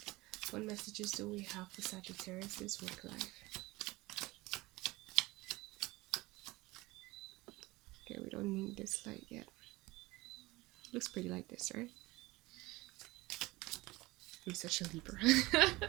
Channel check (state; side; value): quieter; left; 21.0 dB